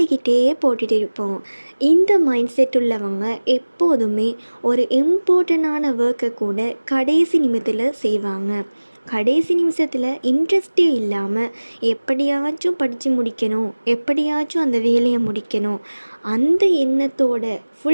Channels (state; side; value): inverted; both; correlation -1.00